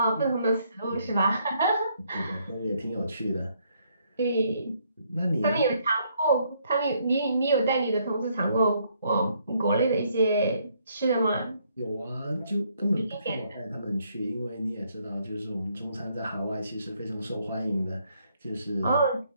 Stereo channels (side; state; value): both; inverted; correlation -0.70